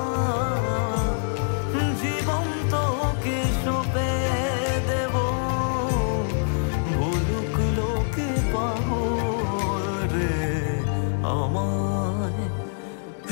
জীবন তোকে সঁপে দেব ভুলুক লোকে পাবো রে আমায়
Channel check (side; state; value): right; silent; 61 dB below the other